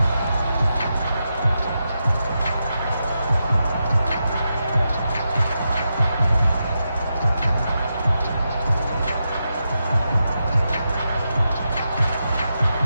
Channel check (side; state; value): both; inverted; correlation -0.87